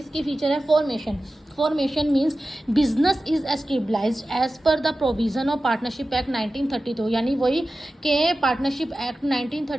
फीचर है formation. Formation means business is established as per the provision of partnership act 1932। यानी वही के पार्टनरशिप एक्ट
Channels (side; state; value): both; normal; correlation 0.94